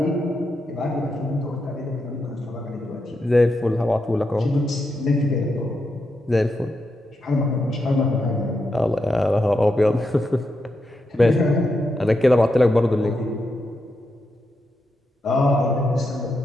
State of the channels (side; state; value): both; normal; correlation 0.84